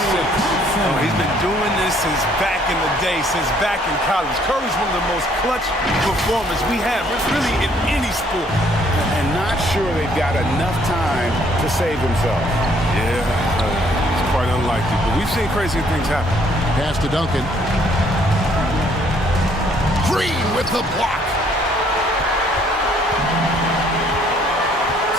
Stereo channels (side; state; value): both; normal; correlation 0.64